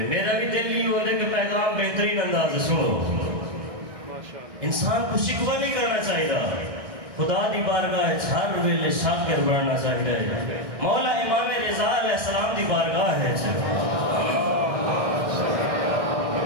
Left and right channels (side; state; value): left; late; 1.6 ms